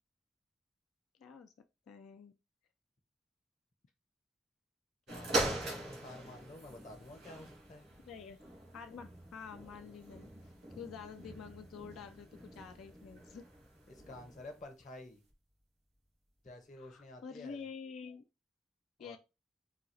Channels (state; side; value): normal; both; correlation 0.57